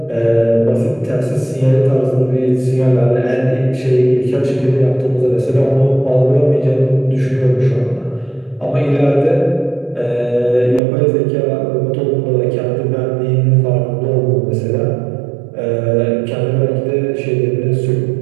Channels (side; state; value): left; drops out; at 10.8 s